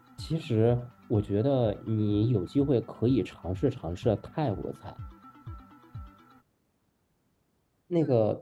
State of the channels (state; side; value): identical; both; correlation 1.00